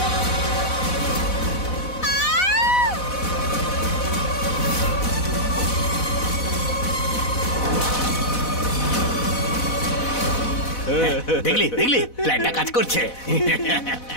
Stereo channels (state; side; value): late; right; 4.0 ms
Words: দেখলি দেখলি প্ল্যানটা কাজ করছে।